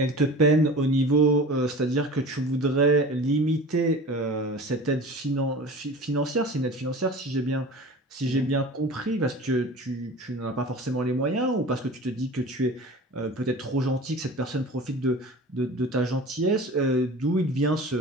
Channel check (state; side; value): normal; both; correlation 0.38